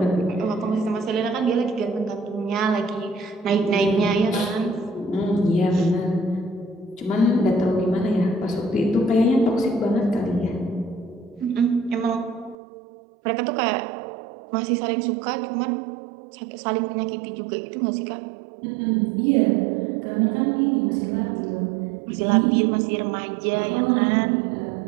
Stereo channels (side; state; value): left; drops out; at 12.6 s